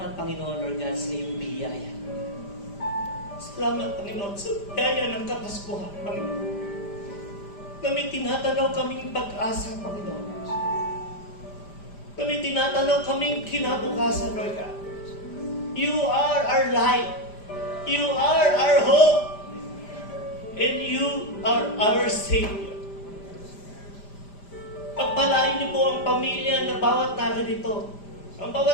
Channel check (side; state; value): right; late; 5.0 ms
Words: Panginoon, Lord God, sa iyong biyaya. Salamat, Panginoon, sa biyaya ng Kapaskuhan, Panginoon. Na may tinatanaw kaming pag-asa, Panginoon. Na may tinatanaw kaming kinabukasan, Lord God. You are our light. You are our hope. And you are our Savior. Pagpalain niyo po ang pamilya na bawat narito. Ang